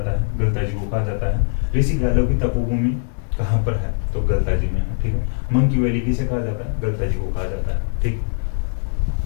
है? गलता जी को कहा जाता है। ऋषि गालो की तपोभूमि कहाँ पर है? तो गलता जी में है, ठीक है। मंकी वैली किसे कहा जाता है? गलता जी को कहा जाता है, ठीक।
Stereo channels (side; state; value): right; silent; digital silence